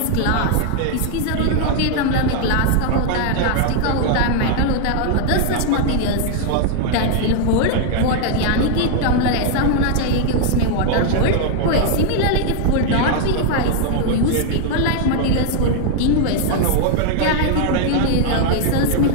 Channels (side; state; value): both; different; correlation 0.00